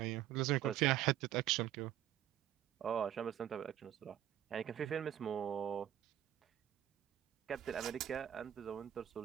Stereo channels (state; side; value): quieter; left; 11.6 dB